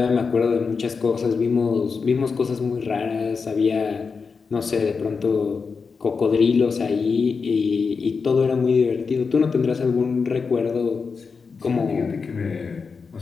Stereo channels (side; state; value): right; quieter; 5.1 dB